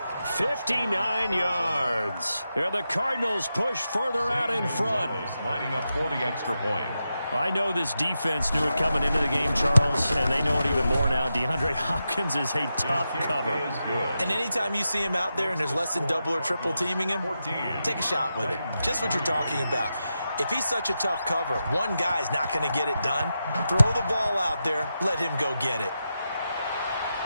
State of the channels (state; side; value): inverted; both; correlation -0.89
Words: 59 yards. And the Cardinals push further out in front. Lining up for the extra point. I know this defense knew it coming into the game, Charles, and they know it even more now. DeAndre Hopkins is a tough cover. And anytime you see him out there and there's less than double or triple teaming him, take a shot with it. Just what you're talking about. If he's such a tough cover, one guy's not going to get it done. Throw the ball out there. Let him go get it.